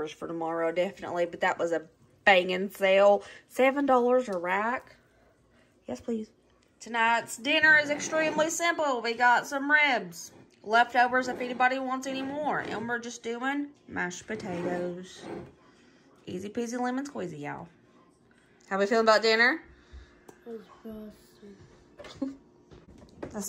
for tomorrow, definitely. But that was a banging sale. $7 a rack. Yes, please. Tonight's dinner is extremely simple. We got some ribs. Leftovers if anybody wants any more. And we're just doing mashed potatoes. Easy peasy lemon squeezy, y'all. How we feeling about dinner?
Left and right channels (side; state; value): both; identical; correlation 1.00